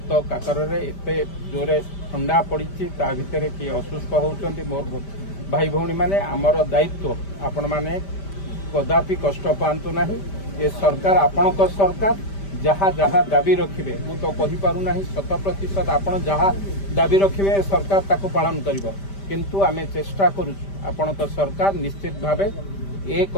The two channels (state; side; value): late; right; 5.1 ms